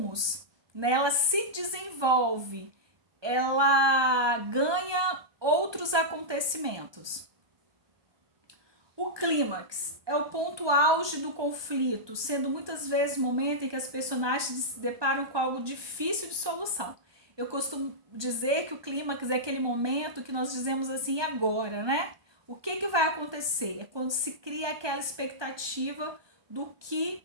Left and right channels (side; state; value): left; late; 1.2 ms